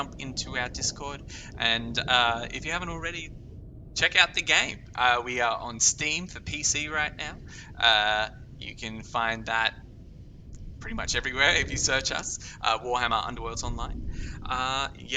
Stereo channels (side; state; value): both; identical; correlation 1.00